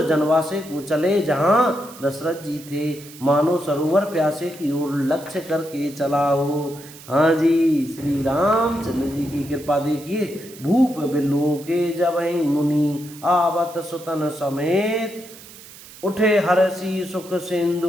जनवासे को चले जहाँ दशरथ जी थे, मानो सरोवर प्यासे की ओर लक्ष्य करके चला हो। हाँ जी, श्री रामचंद्र जी की कृपा देखिए। भूप बिलोके जबहि मुनि, आवत सुतन समेत, उठे हर्षि सुख सिंधु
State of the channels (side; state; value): right; noise; hiss, 18 dB below the sound